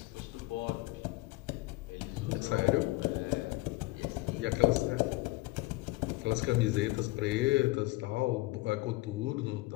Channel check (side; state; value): right; quieter; 20.7 dB